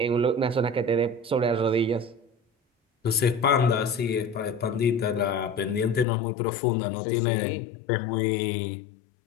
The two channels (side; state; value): right; drops out; at 6.1 s